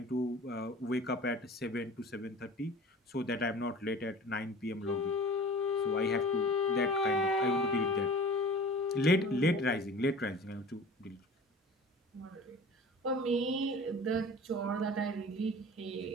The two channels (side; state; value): both; normal; correlation 0.41